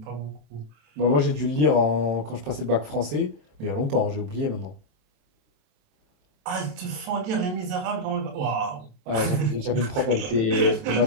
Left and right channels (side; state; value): left; late; 27 ms